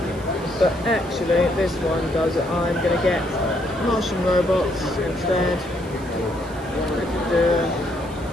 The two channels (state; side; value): noise; right; hiss, 23 dB below the sound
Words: But actually, this one does it. I'm gonna get Martian robots instead.